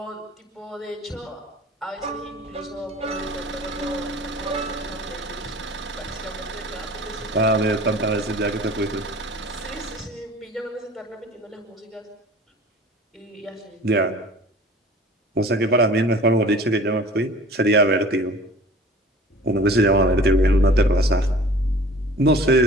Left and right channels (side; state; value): both; normal; correlation 0.45